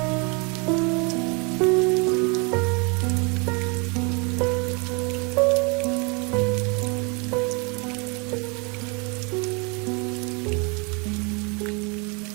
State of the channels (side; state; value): left; quieter; 32.2 dB